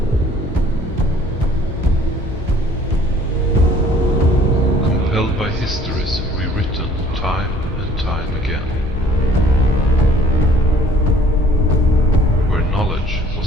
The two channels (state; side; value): normal; both; correlation 0.56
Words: Compelled by histories rewritten time and time again. Knowledge